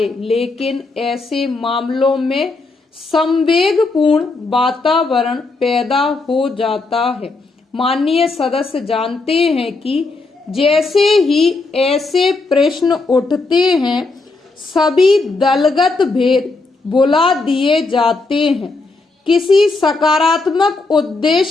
लेकिन ऐसे मामलों में संवेगपूर्ण वातावरण पैदा हो जाता है। माननीय सदस्य जानते हैं कि जैसे ही ऐसे प्रश्न उठते हैं, सभी दलगत भेद भुला दिए जाते हैं। किसी सकारात्मक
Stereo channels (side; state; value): right; quieter; 3.6 dB